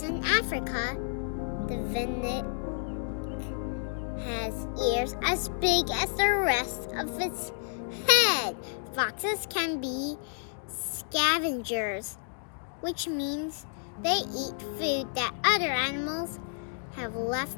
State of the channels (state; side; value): silent; right; digital silence